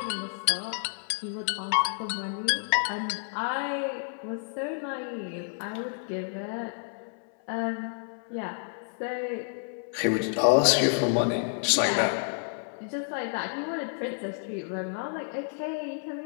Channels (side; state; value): right; silent; 58 dB below the other